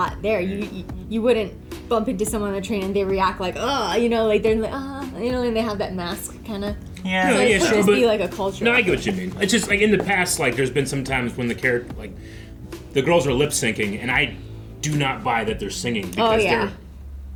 there. You wouldn't bump into someone on the train and they react like, like they're like, and they have that mask kind of. yeah, So yeah, it could sure, just but- be like a culture. No, I get what you mean. It's just like in the past, like there's been some times when the character, like the girls are lip syncing, and I do not buy that they're singing because yeah.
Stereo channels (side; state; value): both; identical; correlation 1.00